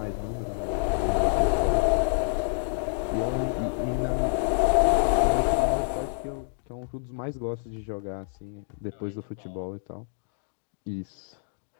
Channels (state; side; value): silent; right; digital silence